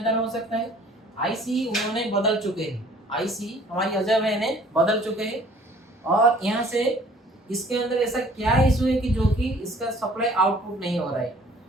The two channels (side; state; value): both; normal; correlation 0.54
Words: हो सकता है। आईसी उन्होंने बदल चुके हैं, आईसी हमारी अजय भाई ने बदल चुके हैं, और यहाँ से इसके अंदर ऐसा क्या इशू है कि जो कि इसका सप्लाई आउटपुट नहीं हो रहा है,